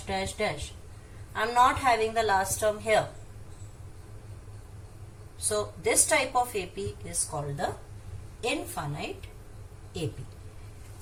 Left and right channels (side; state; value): both; identical; correlation 1.00